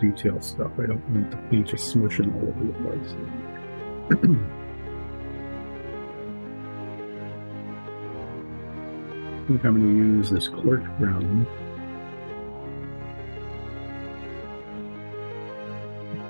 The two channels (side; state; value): both; inverted; correlation -1.00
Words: stuff. I don't want the paint just smushing all over the place. I think I'm going to use this cork brown.